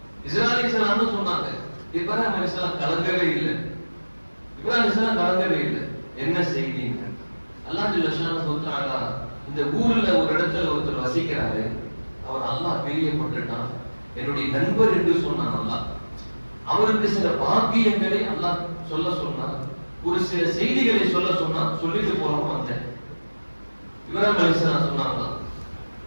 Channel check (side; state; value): both; inverted; correlation -1.00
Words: இப்ராஹிம் அலைஹிஸ்ஸலாம் கலங்கவே இல்லை. என்ன செய்திங்க? அல்லாஹ் ஜல்ல ஷானஹு வ தஆலா இந்த ஊர்ல ஒரு இடத்துல ஒருத்தர் வசிக்கிறாரு, அவர் அல்லாஹ் பிரியப்பட்டுட்டான், என்னுடைய நண்பர் என்று சொன்னான் அல்லாஹ். அவருக்கு சில பாக்கியங்களை அல்லாஹ் சொல்ல சொன்னார், ஒரு சில செய்திகளை சொல்ல சொன்னார், சொல்லிட்டு போறோம் வந்தேன். இப்ராஹிம் அலைஹிஸ்ஸலாம் சொன்னாங்க,